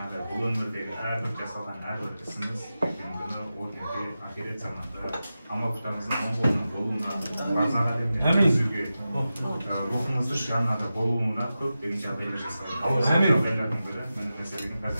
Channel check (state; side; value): inverted; both; correlation -0.93